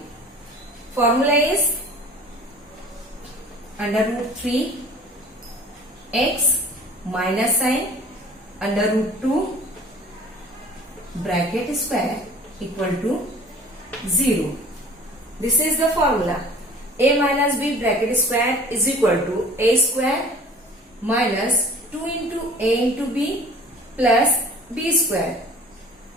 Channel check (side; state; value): both; normal; correlation 0.46